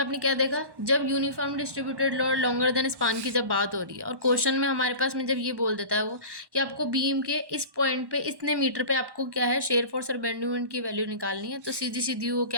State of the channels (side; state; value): left; late; 1.1 ms